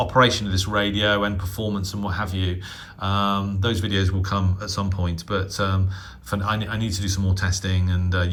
of this radio and performance and what have you. Those videos will come at some point, but I need to do some more testing and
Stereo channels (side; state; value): both; identical; correlation 1.00